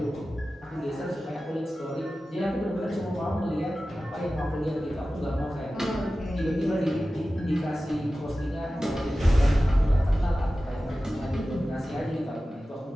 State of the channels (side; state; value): both; normal; correlation 0.95